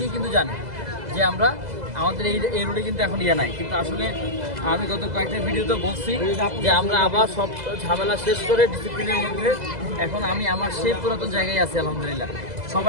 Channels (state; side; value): late; left; 2.0 ms